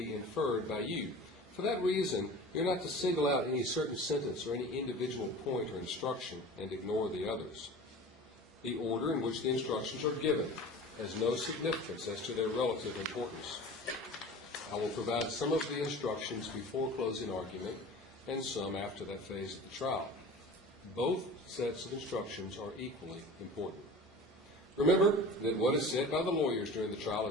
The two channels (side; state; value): both; normal; correlation 0.38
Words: inferred by you. For that reason, you're not to single out any certain sentence or any individual point or instruction and ignore the others. The order in which the instructions are given has no significance as to their relative importance. I will provide some of the instructions before closing argument and some after that phase of the trial. Both sets of instructions are equally important. Remember that what is said by the lawyers during the trial